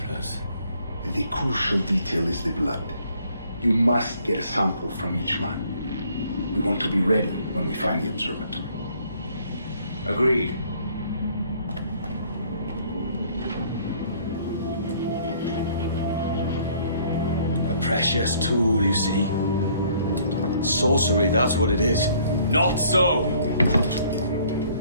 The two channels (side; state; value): both; inverted; correlation -0.61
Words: The crucial detail is the blood. You must get a sample from each man. We want to be ready when we find the observatory. Agreed. A precious tool, you see. Sorcery, that's what it is. Not so!